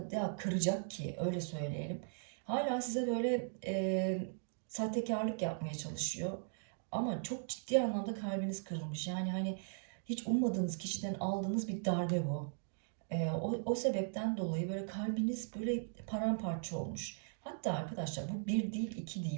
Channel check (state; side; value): silent; left; digital silence